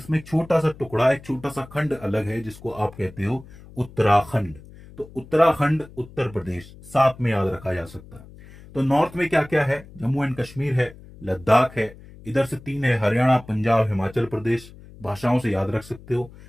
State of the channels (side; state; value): left; noise; hum, 20 dB below the sound